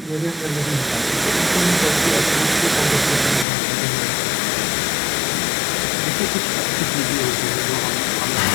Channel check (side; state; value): right; drops out; at 3.5 s